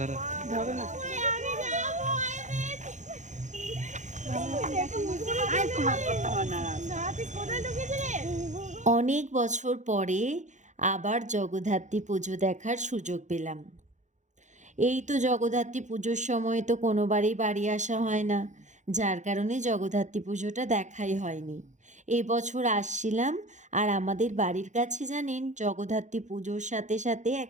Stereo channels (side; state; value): left; late; 0.35 ms